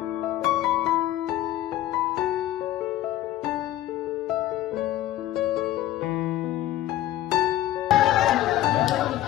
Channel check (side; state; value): right; quieter; 14.0 dB